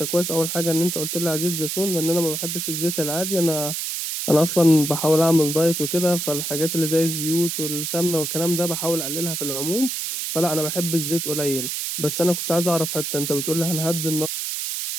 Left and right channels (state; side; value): noise; right; hiss, 3 dB below the sound